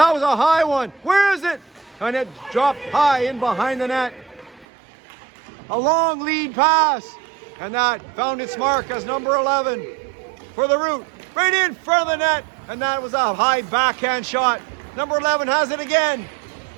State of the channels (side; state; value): left; drops out; at 4.7 s